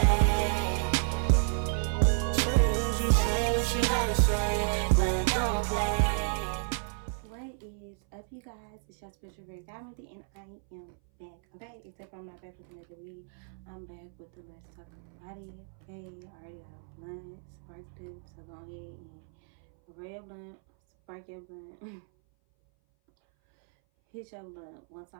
Say what you gotta say, but don't play. What is up, you guys? It's your special very godmother, and I am back. Okay, except I'm not back with another read. I'm back with the Let's Talk About It. Okay, I already got a blunt sparked up, so go ahead and roll your blunt, spark your blunt, hit your blunt one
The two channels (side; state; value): left; silent; 57 dB below the other